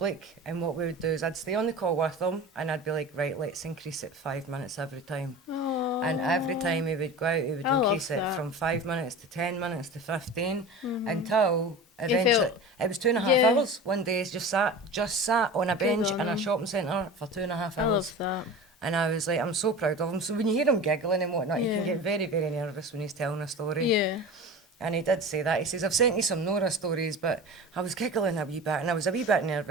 And what we would do is I'd stay on the call with him and I'd be like, right, let's increase it 5 minutes every time. Oh. And every time he would go out, he would I love increase it that. from 5 minutes to 10 minutes to 15 until eventually, felt- it was 2.5 Yeah. hours. One day he just sat on a bench on in a him. shopping centre for 2.5 I hours. love that. And I was like, I'm so proud of him. So when you hear him giggling and whatnot, you Yeah. can get very, very nervous when he's telling a story. Yeah. And he did say that. He says, I've sent you some Nora stories, but I was giggling a wee bit and I was a wee bit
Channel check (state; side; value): normal; both; correlation 0.33